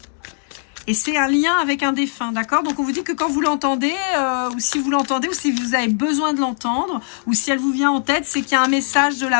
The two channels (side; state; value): right; silent; digital silence